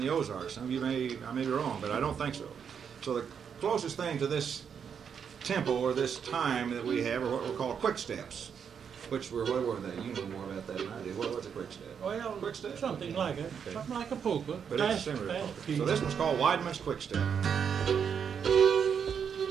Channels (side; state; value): left; quieter; 7.3 dB